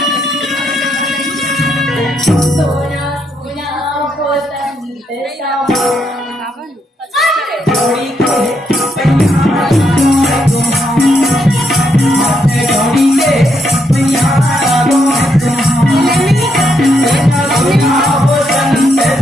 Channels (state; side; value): normal; both; correlation 0.78